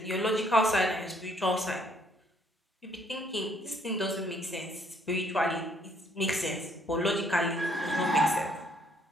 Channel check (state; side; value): normal; both; correlation 0.66